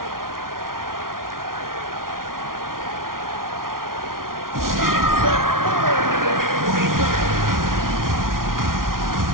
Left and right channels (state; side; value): late; left; 0.92 ms